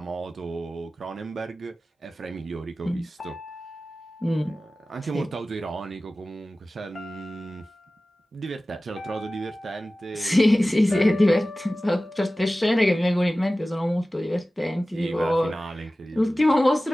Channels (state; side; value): normal; both; correlation 0.96